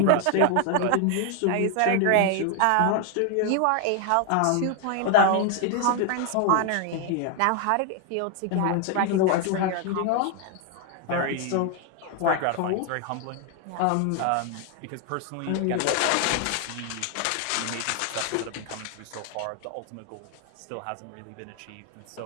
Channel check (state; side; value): different; both; correlation 0.00